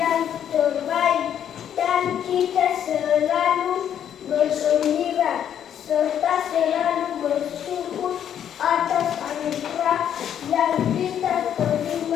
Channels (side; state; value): right; quieter; 9.5 dB